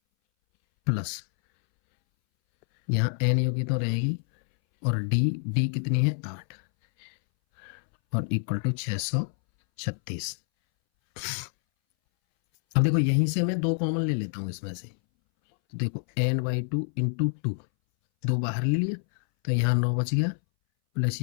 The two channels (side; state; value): right; silent; 60 dB below the other